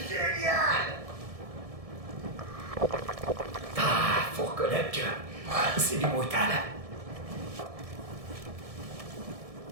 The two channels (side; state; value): left; late; 1.7 ms